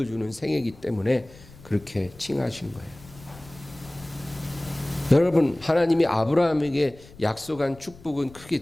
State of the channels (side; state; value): left; noise; rumble, 21 dB below the sound